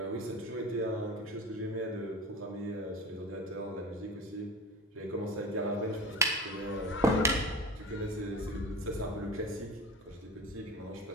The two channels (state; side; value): normal; both; correlation 0.32